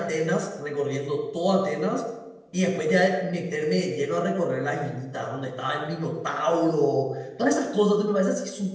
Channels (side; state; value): both; identical; correlation 1.00